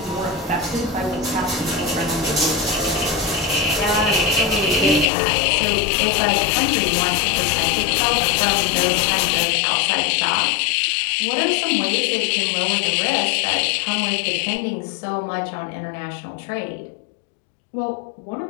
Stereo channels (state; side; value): drops out; right; at 5.1 s